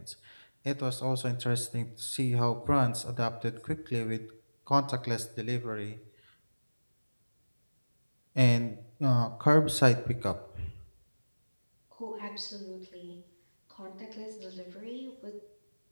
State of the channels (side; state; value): both; inverted; correlation -1.00